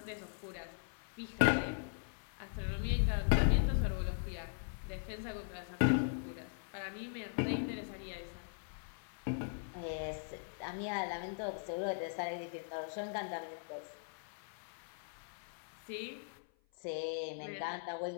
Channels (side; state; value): right; silent; 51 dB below the other